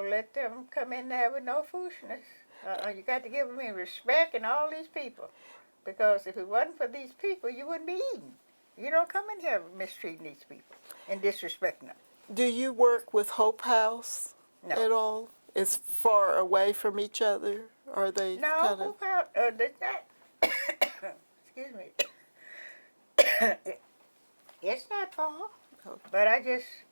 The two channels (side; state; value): both; inverted; correlation -1.00